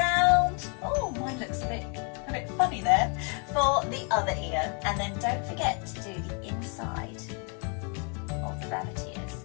Oh, mine looks a bit funny there, for the other ear. And then don't forget to do the inside of the rabbit ears.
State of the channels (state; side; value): quieter; right; 36.4 dB